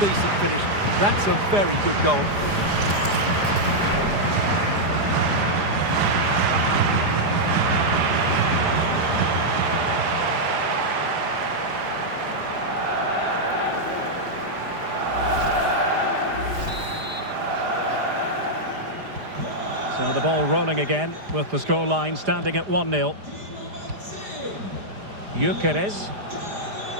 finish. That's a very good goal. So the ball rolling again with the scoreline standing at 1-0. Gyökeres.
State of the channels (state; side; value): late; left; 4.9 ms